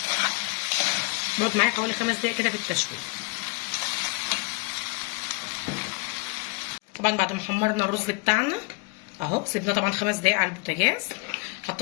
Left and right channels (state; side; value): quieter; right; 27.6 dB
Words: بقعد معايا حوالي 5 دقايق كده في التشويح. طبعا بعد ما حمرنا الرز بتاعنا اهو سيبنا طبعا 5 دقايق على البوتاجاز.